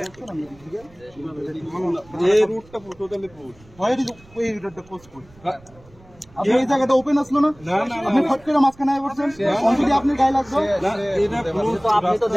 এই রুটটা টোটালি ক্লোজ হয় এই রুটটা ক্লোজ করি আপনি এই জায়গাটা ওপেন আসলো না আপনি ফট করে মাঝখানে আই বলছেন অলরেডি আপনি গায়ে লাগলো না এটা ক্লোজ তো আপনি তো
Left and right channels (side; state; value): right; noise; rumble, 26 dB below the sound